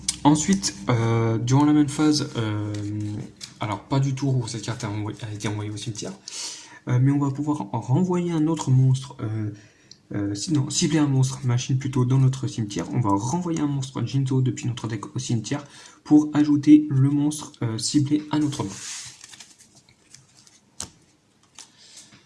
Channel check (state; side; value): identical; both; correlation 1.00